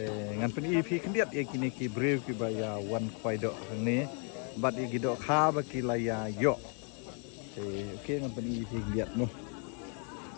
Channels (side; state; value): right; quieter; 39.6 dB